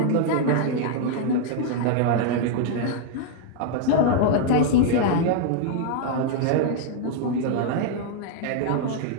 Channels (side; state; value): both; different; correlation 0.00